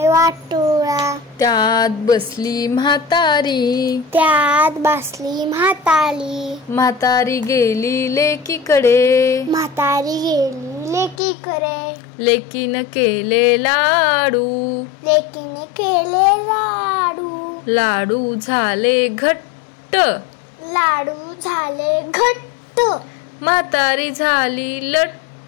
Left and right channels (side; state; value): right; drops out; at 11.2 s